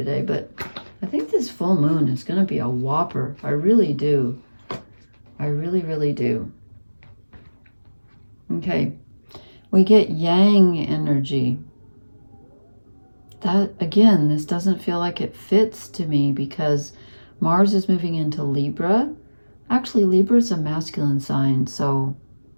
but I think this full moon is going to be a whopper. I really do. I really, really do. Okay. We get Yang energy. That, again, this doesn't feel like it fits to me, because Mars is moving into Libra. Actually, Libra is a masculine sign, so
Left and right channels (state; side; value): inverted; both; correlation -1.00